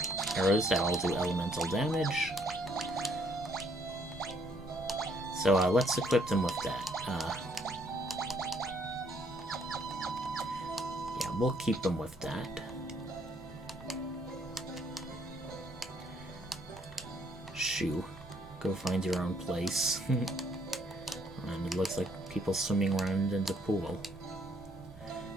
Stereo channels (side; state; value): both; normal; correlation 0.67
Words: arrows that all do elemental damage. So let's equip them with that. Yeah, we'll keep them with that. Shoo. Go find your own place. And it looks like people swimming around in the pool.